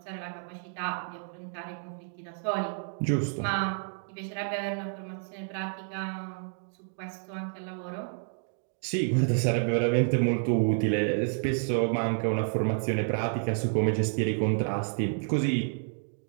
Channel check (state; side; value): silent; left; 58 dB below the other